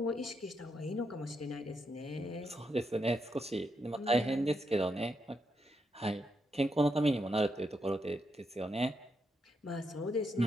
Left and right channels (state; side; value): normal; both; correlation 0.81